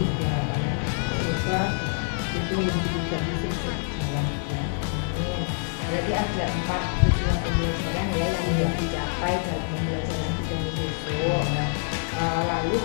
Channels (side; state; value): right; silent; digital silence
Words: gitu harapannya. Semoga itu yang ditujukan bisa berjalan, ya. Berarti ada 4 tujuan pembelajaran ya yang ingin dicapai dalam pembelajaran Bu Dani besok. Lalu